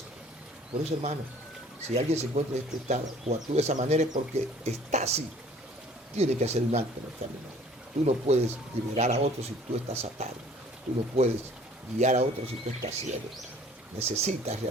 Por eso, hermano, si alguien se encuentra en este estado o actúa de esa manera es porque está así. Tiene que hacer un alto en el camino. Tú no puedes liberar a otros si tú estás atado. Tú no puedes guiar a otros si tú estás ciego. Necesitas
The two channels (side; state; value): both; normal; correlation 0.53